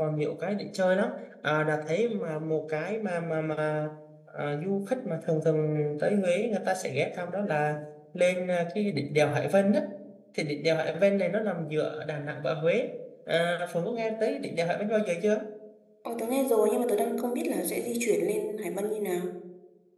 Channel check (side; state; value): both; identical; correlation 1.00